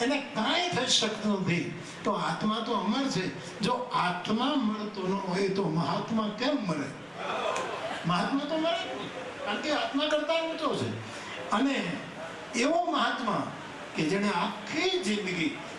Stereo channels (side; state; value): both; identical; correlation 1.00